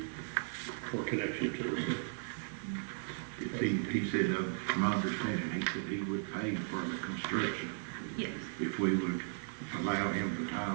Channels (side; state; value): left; silent; digital silence